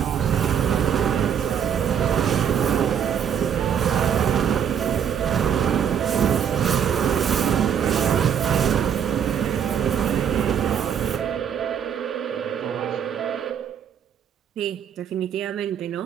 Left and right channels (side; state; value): left; quieter; 8.4 dB